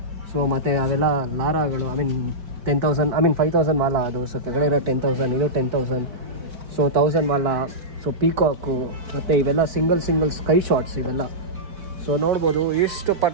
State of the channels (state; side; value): late; left; 4.5 ms